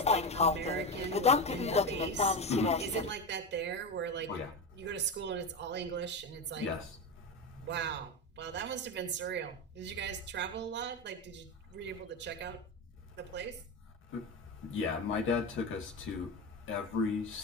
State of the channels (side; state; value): both; normal; correlation 0.18